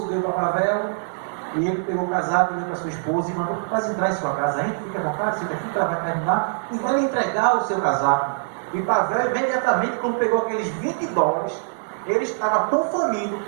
deu para Pavel, e ele pegou o casaco, deu para sua esposa e mandou: quase entrar em sua casa, hein? Fica à vontade, senta aqui que ela vai terminar e vai lhe entregar o seu casaco. E Pavel, imediatamente, quando pegou aqueles $20, ele estava tão faminto,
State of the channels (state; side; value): silent; left; digital silence